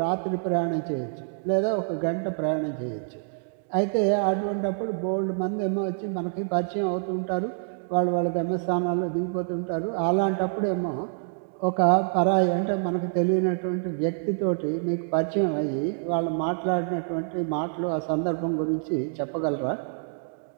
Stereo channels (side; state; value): left; silent; digital silence